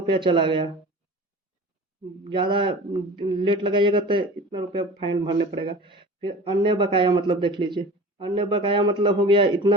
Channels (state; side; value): normal; both; correlation 0.38